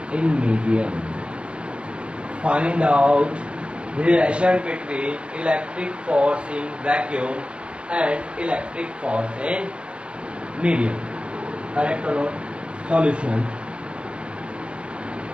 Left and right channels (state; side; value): late; left; 0.059 ms